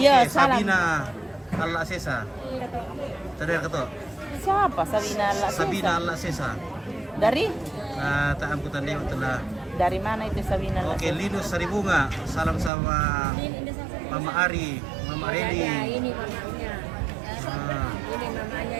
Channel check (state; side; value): drops out; left; at 12.7 s